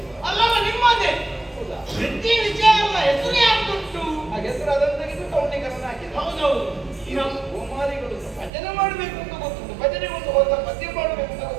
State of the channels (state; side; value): drops out; left; at 8.5 s